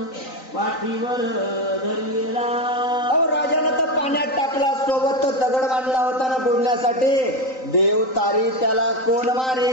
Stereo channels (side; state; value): right; late; 3.9 ms